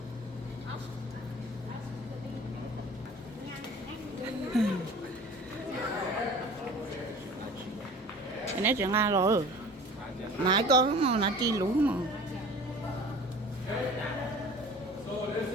Cái này chuyện Nga rồi. Nãy có mà nãy chi lú mà. So this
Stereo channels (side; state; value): both; normal; correlation 0.43